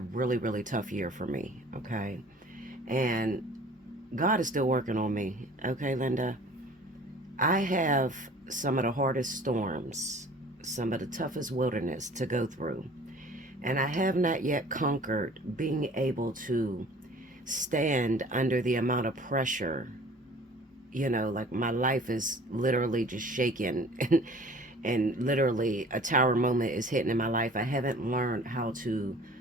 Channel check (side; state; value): both; normal; correlation 0.48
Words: really tough year for me, okay? And God is still working on me, okay, Linda? I have some of the hardest storms, some of the toughest wilderness to go through. And I have not yet conquered being able to stand under the amount of pressure. You know, like my life is literally just shaking and literally a tower moment is hitting in my life. I haven't learned how to